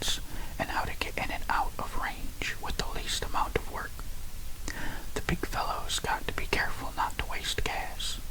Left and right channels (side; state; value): both; identical; correlation 1.00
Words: and how to get in and out of range with the least amount of work. The big fellows got to be careful not to waste gas.